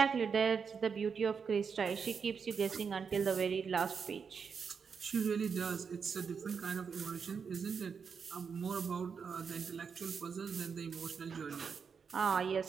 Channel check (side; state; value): left; quieter; 6.1 dB